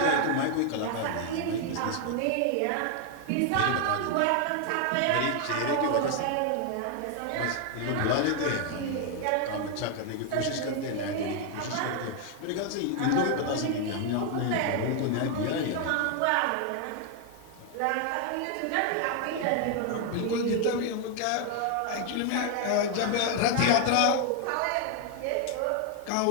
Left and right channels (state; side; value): different; both; correlation 0.00